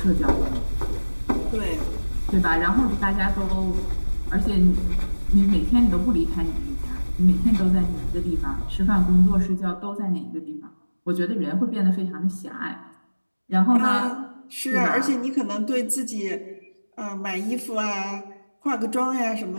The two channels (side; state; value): both; inverted; correlation -1.00